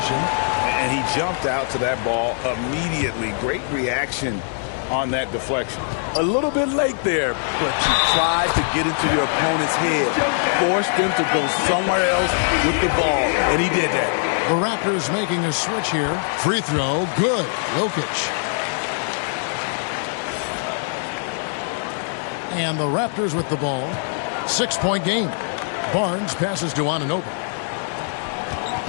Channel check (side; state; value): right; silent; 64 dB below the other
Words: And he jumped out to that ball immediately. Great reaction on that deflection. A little bit late there, but you tried to get into your opponent's head. Forced them to go somewhere else with the ball, and he did that. The Raptors making a switch here. Free throw, good. Jokic. And the Raptors with the ball. 6-point game. Barnes passes to Anunoby.